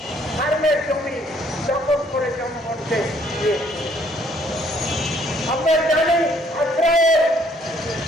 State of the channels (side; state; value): both; normal; correlation 0.64